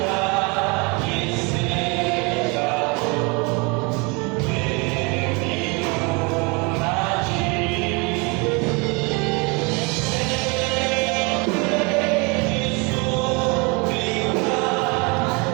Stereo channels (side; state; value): left; quieter; 29.9 dB